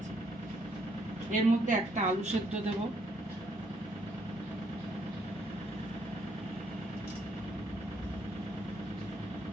এর মধ্যে একটা আলু সেদ্ধ দেব,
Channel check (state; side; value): normal; both; correlation 0.70